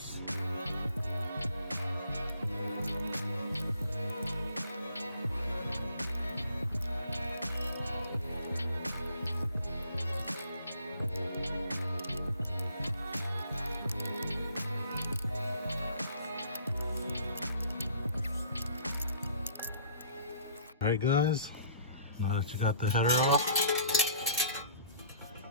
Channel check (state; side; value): inverted; both; correlation -0.53